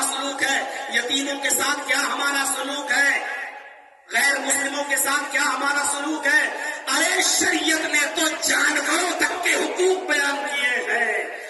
سلوک ہے، یتیموں کے ساتھ کیا ہمارا سلوک ہے، غیر مسلموں کے ساتھ کیا ہمارا سلوک ہے۔ ارے شریعت نے تو جانوروں تک کے حقوق بیان کیے ہیں،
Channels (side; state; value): both; identical; correlation 1.00